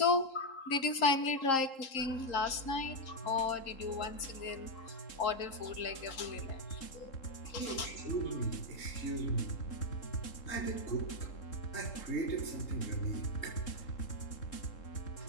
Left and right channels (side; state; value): right; late; 3.8 ms